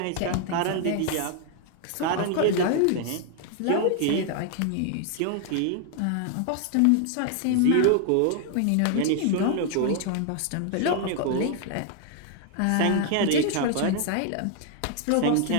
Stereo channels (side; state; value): both; different; correlation 0.00